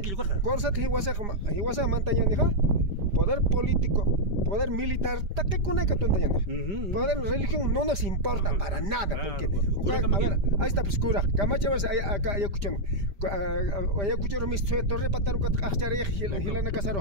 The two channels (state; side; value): late; left; 5.0 ms